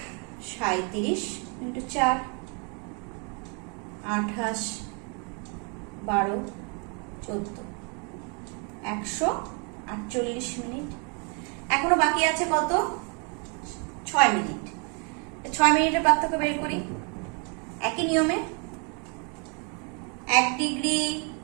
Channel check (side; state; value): left; quieter; 35.9 dB